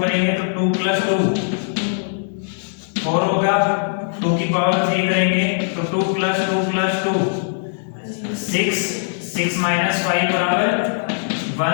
करेंगे तो 2 प्लस 2 4 होगा, 2 की पावर 3 करेंगे तो 2 प्लस 2 प्लस 2 6, 6 माइनस 5 बराबर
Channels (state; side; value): silent; right; digital silence